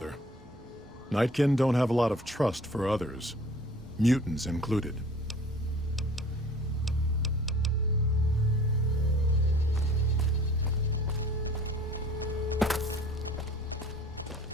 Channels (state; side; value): normal; both; correlation 0.49